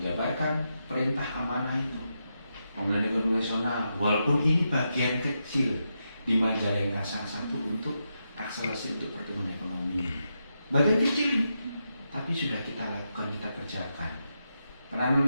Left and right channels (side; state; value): both; inverted; correlation -0.85